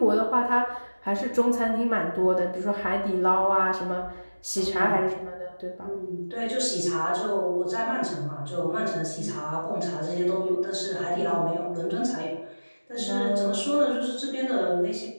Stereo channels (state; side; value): inverted; both; correlation -1.00